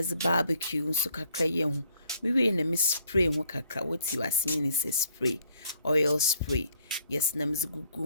barbecue nso kakra ye ho. Mi we na mi spray ho kakra. What you are seeing is a spray, oil spray. Yes, na meze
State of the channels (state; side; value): inverted; both; correlation -0.66